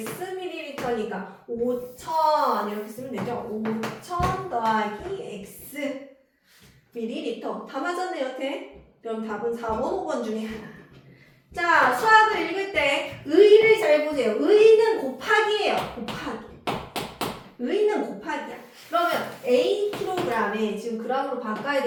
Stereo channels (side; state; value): both; identical; correlation 1.00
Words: 밀리리터니까 5,000 이렇게 쓰면 되죠? 5,000 더하기 x 밀리리터 다 맞았네요, 여태? 그럼 답은 4번, 5번 중에 하나. 자, 수학을 읽을 때 의를 잘 보세요. 의는 곱하기예요. 곱하기. 의는 곱하기야. 그러면 A kg에 지금 g으로 바꿔야